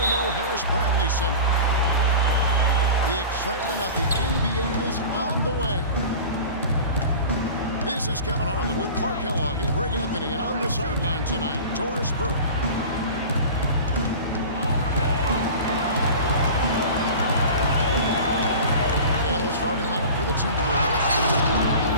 Harris Bradley Center. The excitement of the NBA is on the way. This is Kevin Harlan with Clark Kellogg and Greg Anthony, and on the sideline tonight, Doris Burke. And the starting lineup for the Timberwolves.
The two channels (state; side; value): inverted; both; correlation -0.36